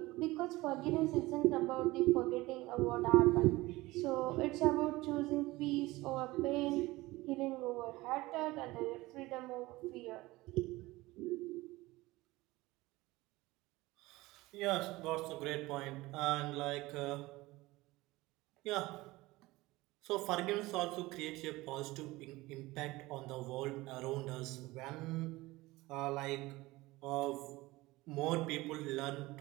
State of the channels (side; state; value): left; quieter; 19.9 dB